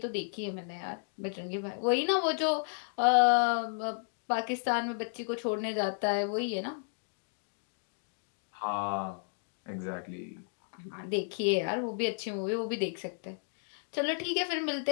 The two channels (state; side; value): silent; right; digital silence